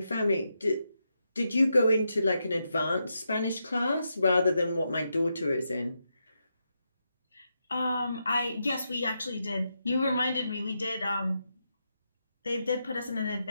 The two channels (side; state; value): both; inverted; correlation -0.84